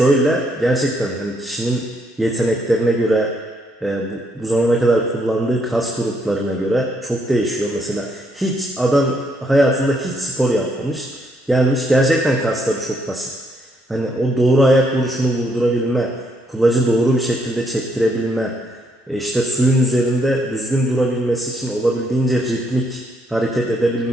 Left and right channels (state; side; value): normal; both; correlation 0.73